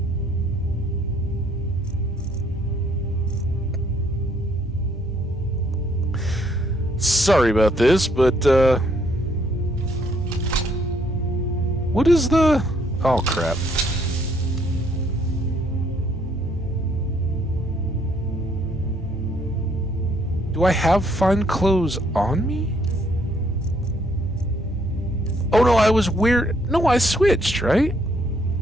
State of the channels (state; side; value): normal; both; correlation 0.67